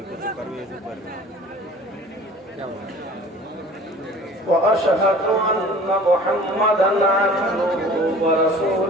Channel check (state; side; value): normal; both; correlation 0.46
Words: وأشهد أن محمدا عبده